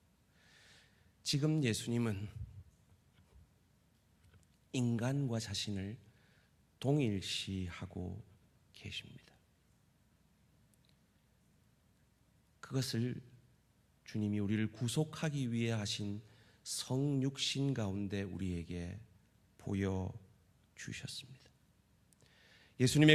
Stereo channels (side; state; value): both; identical; correlation 1.00